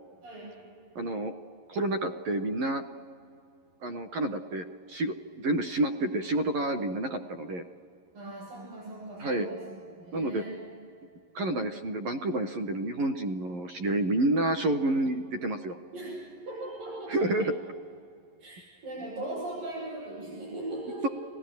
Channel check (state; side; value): late; left; 11 ms